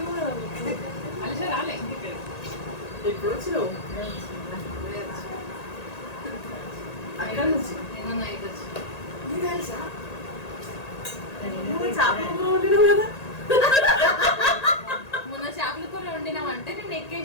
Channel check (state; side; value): late; right; 1.8 ms